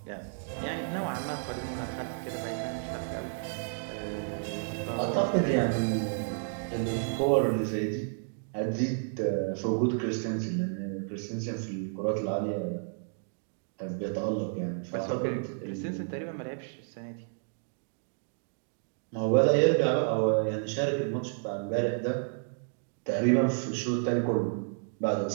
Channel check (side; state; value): left; silent; digital silence